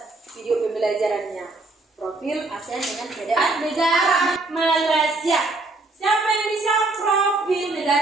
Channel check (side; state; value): left; quieter; 3.1 dB